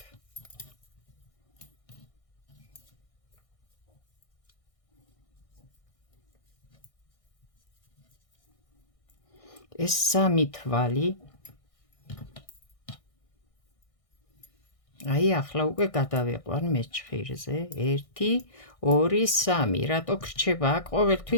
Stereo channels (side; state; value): right; late; 1.6 ms